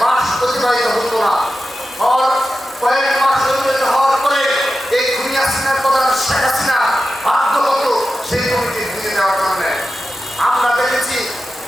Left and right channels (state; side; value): normal; both; correlation 0.92